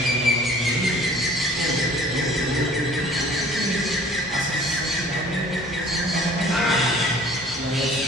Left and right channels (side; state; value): both; normal; correlation 0.50